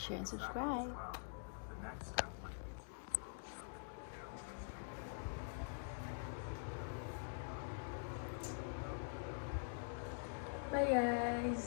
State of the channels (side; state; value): right; silent; digital silence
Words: and subscribe. Bye,